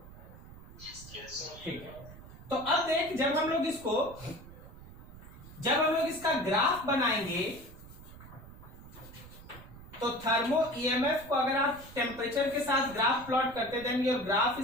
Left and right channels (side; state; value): right; noise; rumble, 17 dB below the sound